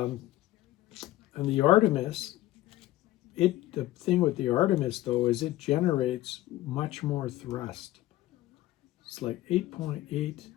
the Artemis, the thing with the Artemis though is it generates much more thrust. It's like 8.8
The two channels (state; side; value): quieter; right; 15.9 dB